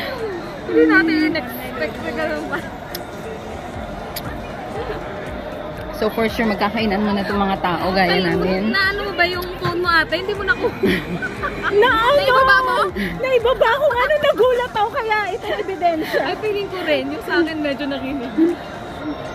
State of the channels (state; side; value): identical; both; correlation 1.00